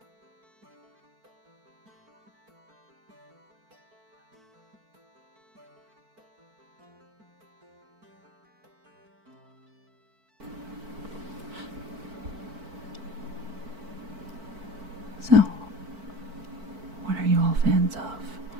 So, what are you all fans of?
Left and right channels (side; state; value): left; late; 4.5 ms